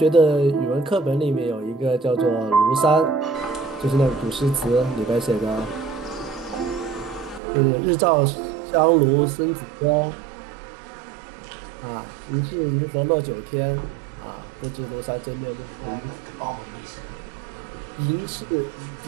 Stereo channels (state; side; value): drops out; left; at 7.4 s